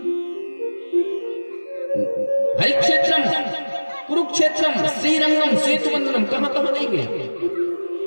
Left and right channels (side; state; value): both; inverted; correlation -1.00